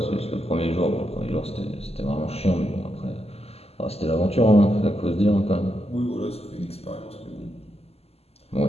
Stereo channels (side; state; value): right; late; 0.29 ms